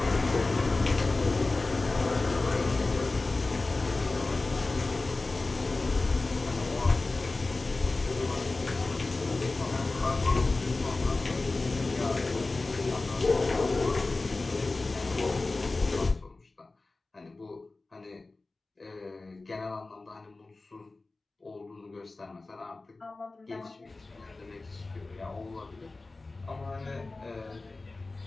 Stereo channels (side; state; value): right; quieter; 3.4 dB